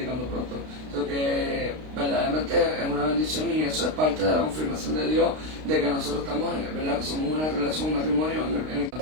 pronto. So que verdaderamente es una bendición y eso es parte de la confirmación de Dios de que nosotros estamos, ¿verdad? Que somos una relación, un matrimonio en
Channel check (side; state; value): left; late; 32 ms